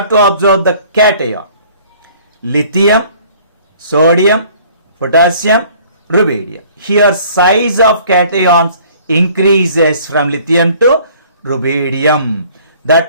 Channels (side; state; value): both; inverted; correlation -0.54